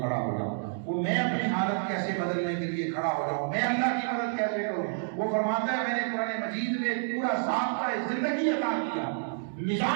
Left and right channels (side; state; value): left; silent; digital silence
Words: ہو جاؤں؟ وہ میں اپنی حالت کیسے بدلنے کے لیے کھڑا ہو جاؤں؟ میں اللہ کی مدد کیسے کروں؟ وہ فرماتا ہے میں نے قرآن مجید میں پورا ضابطہ زندگی عطا کیا،